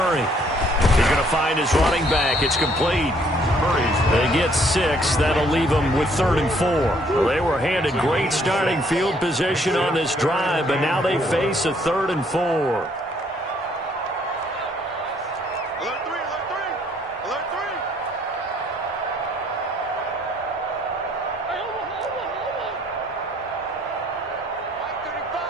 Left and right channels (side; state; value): both; normal; correlation 0.65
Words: He's going to find his running back. It's complete. They get 6. That'll leave them with 3rd and 4. Well, they were handed great starting field position on this drive, but now they face a 3rd and 4.